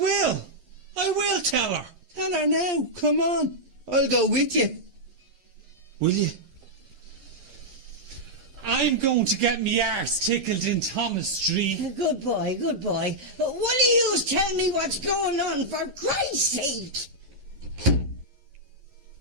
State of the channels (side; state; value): left; late; 11 ms